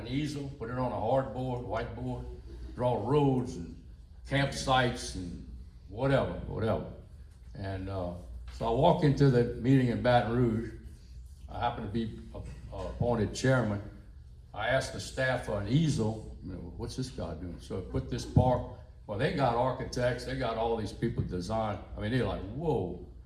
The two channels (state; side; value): identical; both; correlation 1.00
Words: easel, put it on a hardboard, whiteboard, draw roads and campsites and whatever. And so I walk into the meeting in Baton Rouge. I happen to be appointed chairman. I asked the staff for an easel. You know, what's this guy doing? So I put this park. Well, they got architects. They got all these people design. I mean, they're like, whoa,